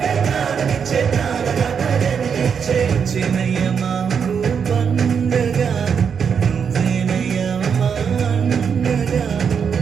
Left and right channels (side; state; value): left; quieter; 6.8 dB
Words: ప్రాణమిచ్చే ప్రాణదాత జన్మించే. చిన్నయ్య మాకు పండగ నువ్వేనయ్య మా అండగా.